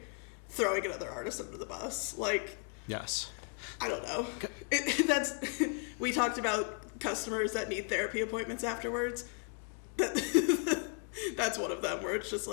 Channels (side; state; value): right; quieter; 38.8 dB